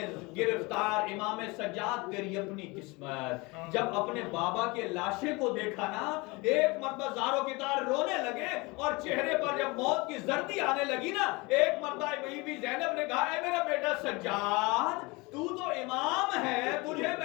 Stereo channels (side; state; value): right; quieter; 25.4 dB